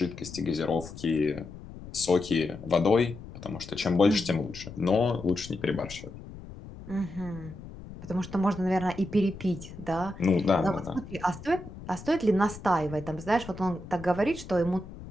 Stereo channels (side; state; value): left; noise; rumble, 14 dB below the sound